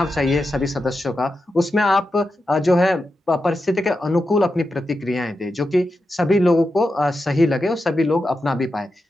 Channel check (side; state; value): both; normal; correlation 0.89